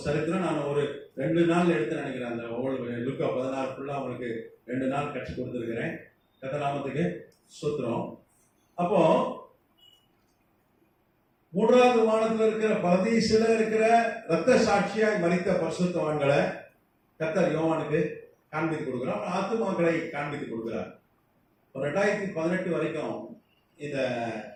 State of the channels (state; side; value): identical; both; correlation 1.00